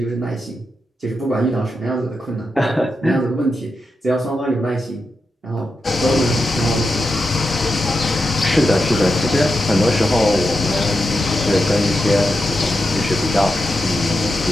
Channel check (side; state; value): both; normal; correlation 0.88